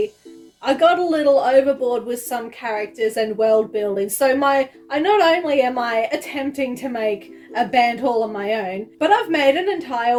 I got a little overboard with some characters and world building. So not only am I attempting to make a band all on my own, but I've made an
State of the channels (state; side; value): identical; both; correlation 1.00